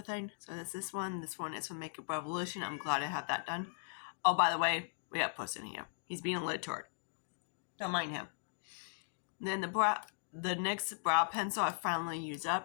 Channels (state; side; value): silent; right; digital silence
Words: thing. So that's this one. This one is from Makeup Revolution. I'm glad I have that done. Oh, by the way, we got Puss in here. He's being a little turd. Don't mind him. Then the next brow pencil I finally used